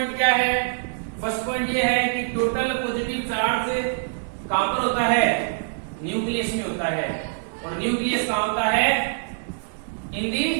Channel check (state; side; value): silent; left; digital silence